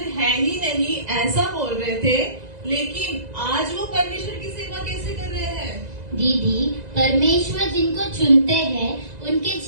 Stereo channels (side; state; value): left; late; 1.9 ms